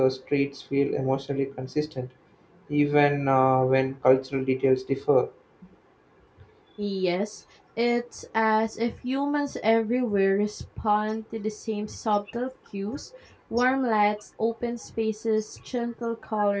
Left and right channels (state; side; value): identical; both; correlation 1.00